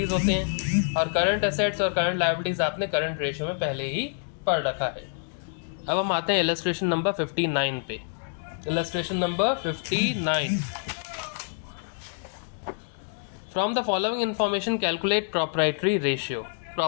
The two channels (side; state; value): right; silent; digital silence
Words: होते हैं, और करंट एसेट्स और करंट लायबिलिटीज़ आपने करंट रेशियो में पहले ही पढ़ रखा है। अब हम आते हैं इलस्ट्रेशन नंबर 59 पे। Illustration number 59, from the following information calculate proprietary ratio.